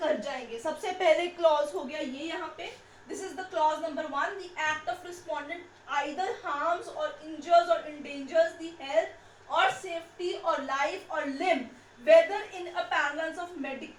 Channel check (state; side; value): identical; both; correlation 1.00